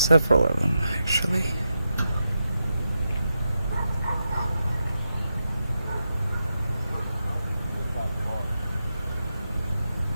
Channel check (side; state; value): both; inverted; correlation -0.88